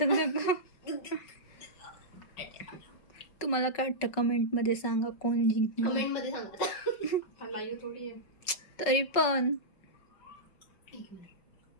तुम्हाला काय वाटतं कमेंट मध्ये सांगा कोण जिंकणार. कमेंट मध्ये सांगा. लाईव्ह थोडी आहे. तरी पण एक मिनिट.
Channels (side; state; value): right; late; 5.3 ms